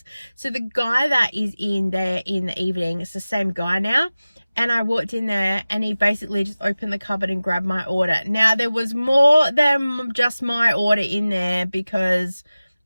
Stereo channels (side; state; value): both; inverted; correlation -0.97